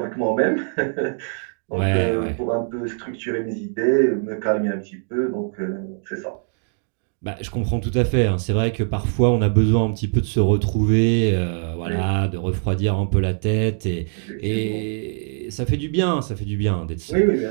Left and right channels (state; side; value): silent; left; 64 dB below the other